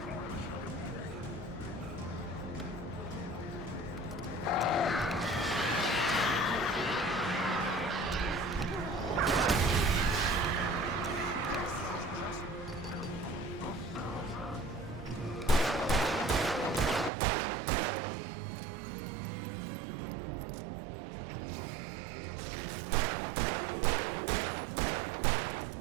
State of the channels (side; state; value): left; drops out; at 17.1 s